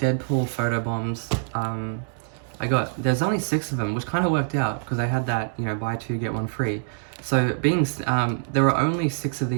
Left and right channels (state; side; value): silent; left; digital silence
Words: Deadpool photo bombs. There's only 6 of them, which kind of worked out, because I had that, you know, buy 2, get 1 free. So, there were only 6 of